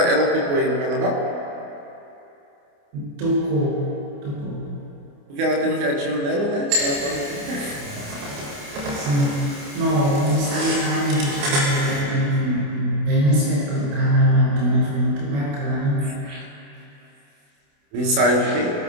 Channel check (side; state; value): left; late; 28 ms